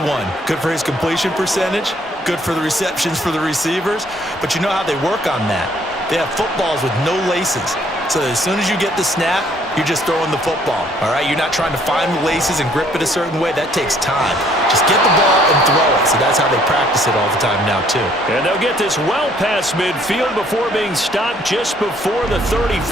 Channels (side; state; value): both; normal; correlation 0.63